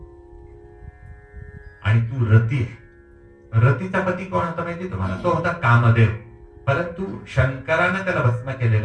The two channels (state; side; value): identical; both; correlation 1.00